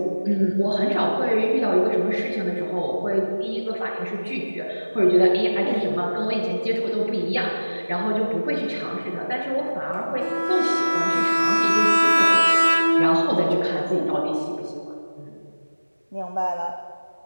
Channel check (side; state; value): both; inverted; correlation -1.00